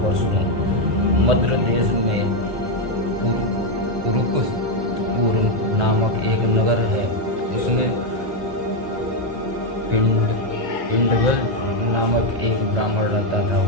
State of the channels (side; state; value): left; late; 1.8 ms